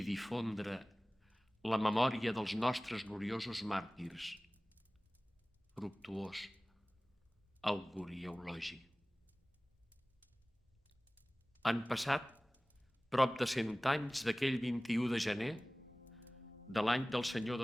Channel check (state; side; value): normal; both; correlation 0.98